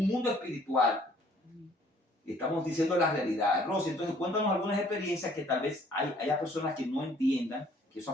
mundo espiritual. Y estamos diciendo la realidad. Rosy, entonces cuéntanos algunas experiencias que tal vez haya personas que no entiendan que eso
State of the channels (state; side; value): normal; both; correlation 0.59